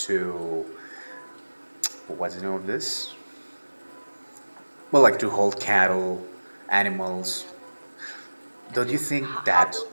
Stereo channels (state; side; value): inverted; both; correlation -1.00